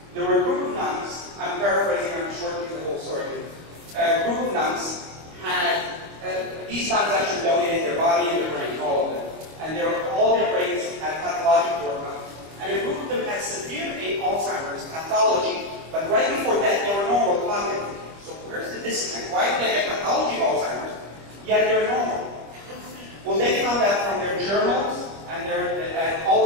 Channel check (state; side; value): late; left; 25 ms